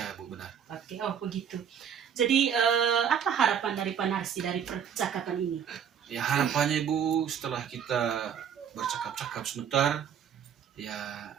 Ya? Bu, benar. Oke, oh begitu. Jadi apa harapan dari Pak Narsi dari percakapan ini? Ya, harapannya Ibu setelah kita bercakap-cakap sebentar, ya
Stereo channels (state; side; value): quieter; left; 8.2 dB